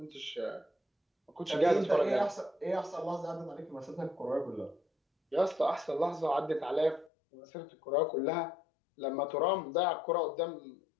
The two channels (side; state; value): right; drops out; at 7.1 s